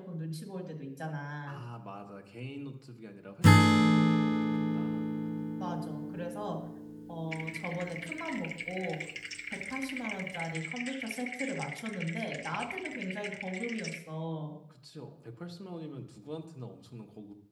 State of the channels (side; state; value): both; identical; correlation 1.00